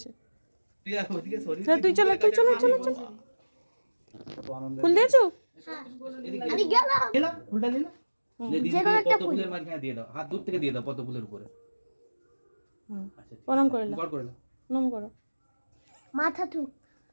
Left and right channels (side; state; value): both; inverted; correlation -1.00